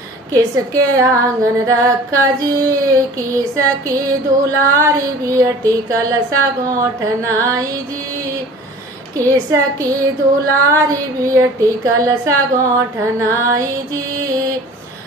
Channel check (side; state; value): both; normal; correlation 0.44